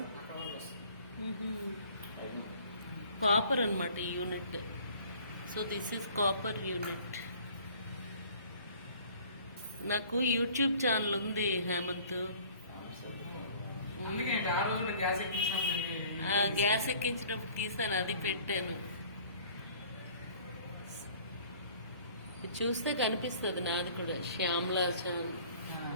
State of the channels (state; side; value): inverted; both; correlation -0.52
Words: కాపర్ అన్నమాట ఈ unit. So this is copper unit. నాకు యూట్యూబ్ ఛానల్ ఉంది హేమంత్. గ్యాస్ ఎక్కించినప్పుడు తీసాను, అది పెట్టాను. చూస్తే కనిపిస్తుంది నాది కూడా. శ్యామ్లా ఛానల్